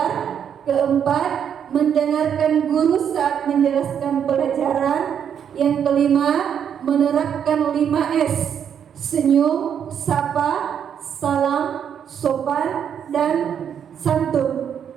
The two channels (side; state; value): left; quieter; 8.4 dB